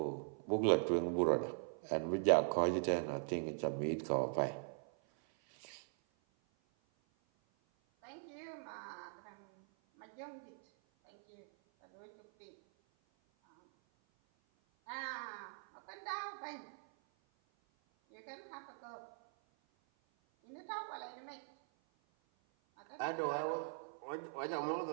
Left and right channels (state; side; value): silent; left; 50 dB below the other